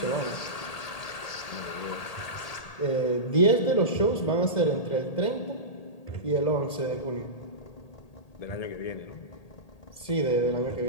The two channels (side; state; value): right; late; 1.8 ms